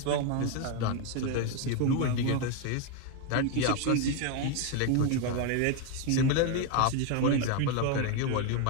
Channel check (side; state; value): both; different; correlation 0.01